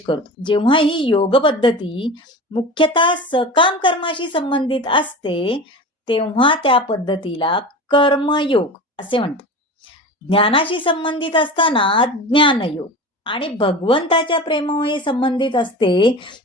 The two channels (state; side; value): normal; both; correlation 0.32